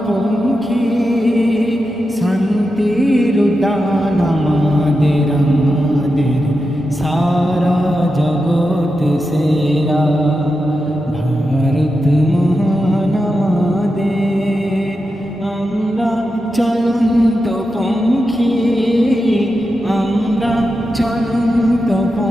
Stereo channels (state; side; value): normal; both; correlation 0.89